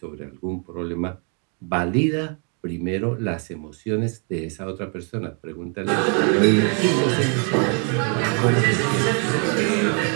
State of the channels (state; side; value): quieter; left; 38.6 dB